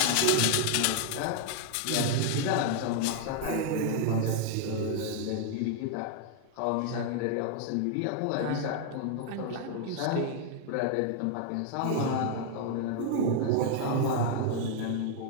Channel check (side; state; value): both; different; correlation 0.00